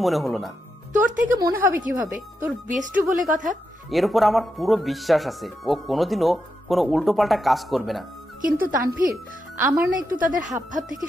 মনে হলো না। তোর থেকে মনে হবে কিভাবে? তোর বেস্টু বলে কথা। এর উপর আমার পুরো বিশ্বাস আছে ও কোনোদিনও কোনো উল্টোপাল্টা কাজ করবে না। কিন্তু তানভীর, আমার না একটু তাদের হাব ভাব থেকে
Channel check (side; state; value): both; normal; correlation 0.85